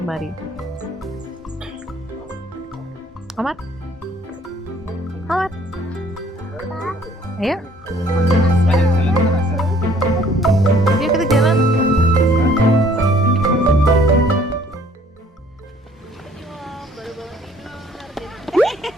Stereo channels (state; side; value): normal; both; correlation 0.58